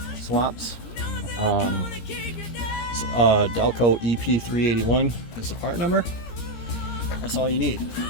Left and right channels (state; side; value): late; right; 17 ms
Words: swaps. Delco EP381 is the part number. That's all you need.